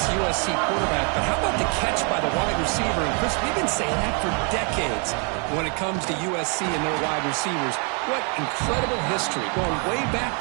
USC quarterback, but how about the catch by the wide receiver? And Chris, we've been saying that for decades when it comes to USC and their wide receivers. What incredible history, going way back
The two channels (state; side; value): quieter; left; 37.2 dB